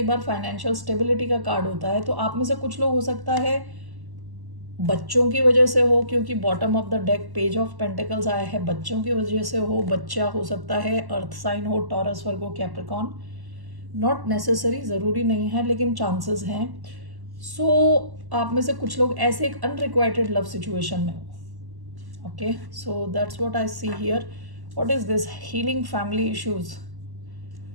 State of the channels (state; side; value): late; left; 1.1 ms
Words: बार फाइनेंशियल स्टेबिलिटी का कार्ड होता है। तो आप में से कुछ लोग हो सकता है बच्चों की वजह से हो, क्योंकि bottom of the deck page of pentacles आया है, बच्चों की वजह से हो। बच्चा हो सकता है अर्थ साइन हो, taurus, Virgo, Capricorn, not necessary, ज़रूरी नहीं है लेकिन चांसेस हैं। सो आप में से कुछ लोग ऐसे एक अनरिक्वाइटेड लव सिचुएशन में हो, okay. So that's what I see here. What is this, healing family issues.